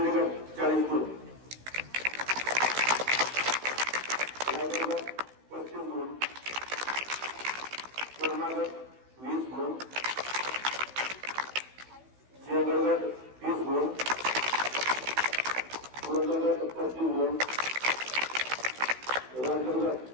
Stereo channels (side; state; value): left; late; 16 ms